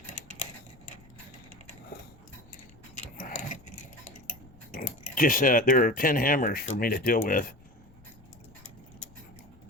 Just there are 10 hammers for me to deal with.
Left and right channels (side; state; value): left; noise; rumble, 25 dB below the sound